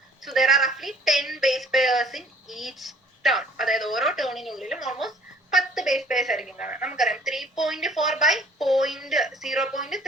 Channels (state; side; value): normal; both; correlation 0.56